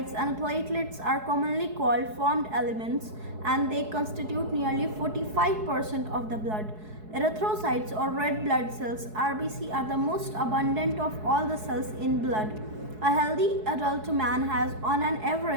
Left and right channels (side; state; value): left; late; 4.7 ms